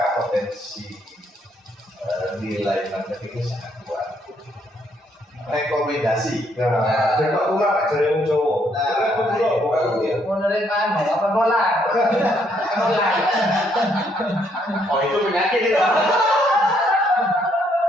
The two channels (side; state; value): both; normal; correlation 0.71